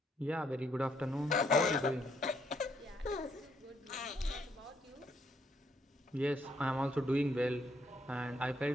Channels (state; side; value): normal; both; correlation 0.72